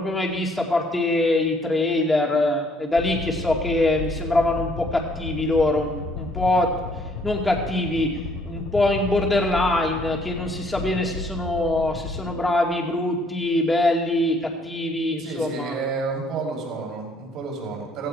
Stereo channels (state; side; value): normal; both; correlation 0.64